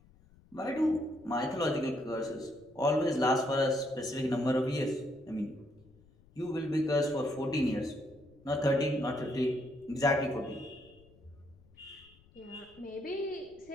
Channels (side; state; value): left; noise; rumble, 28 dB below the sound